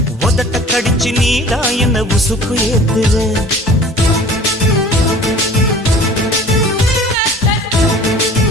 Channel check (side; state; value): both; normal; correlation 0.46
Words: உதட்ட கடிச்சு நீதான் என்ன உசுப்பு ஏத்துற.